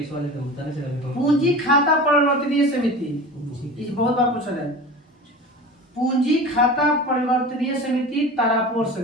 वाले तो होता है। पूंजी खाता परिवर्तनीय समिति, इस बहुत बार पूछा है। पूंजी खाता परिवर्तनीय समिति तारापुर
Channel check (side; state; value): both; normal; correlation 0.34